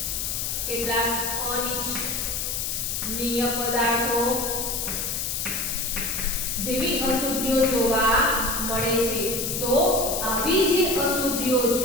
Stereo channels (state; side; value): noise; left; hiss, 2 dB below the sound